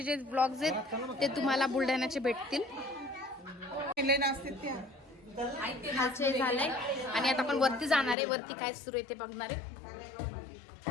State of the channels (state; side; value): drops out; right; at 8.2 s